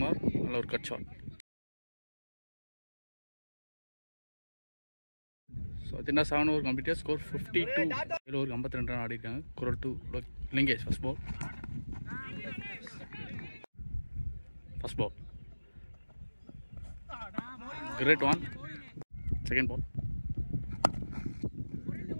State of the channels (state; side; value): inverted; both; correlation -1.00